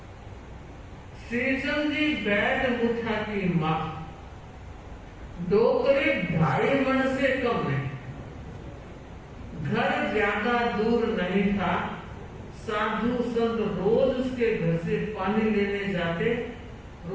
श्रीचंद जी बैठ मुठा की मां, डोकरे 2.5 मन से कम नहीं। घर ज्यादा दूर नहीं था। साधु संत रोज उसके घर से पानी लेने जाते,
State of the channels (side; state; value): both; identical; correlation 1.00